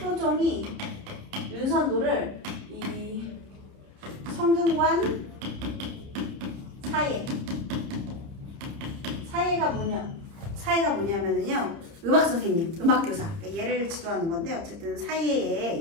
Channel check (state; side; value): late; left; 30 ms